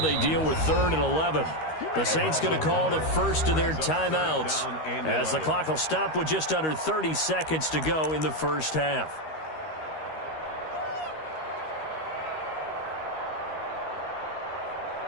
deal with 3rd and 11. The Saints going to call the first of their timeouts as the clock will stop with just under 30 seconds to go in the first half.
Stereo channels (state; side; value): late; right; 13 ms